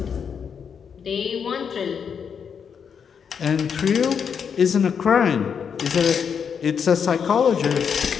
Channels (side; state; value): right; quieter; 7.0 dB